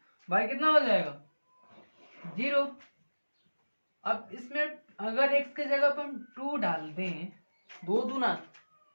y कितना हो जाएगा 0। अब इसमें अगर x के जगह पर हम 2 डाल दें, 2 दूना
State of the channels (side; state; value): both; inverted; correlation -1.00